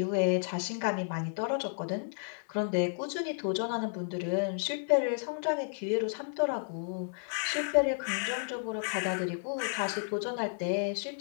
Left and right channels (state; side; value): silent; right; digital silence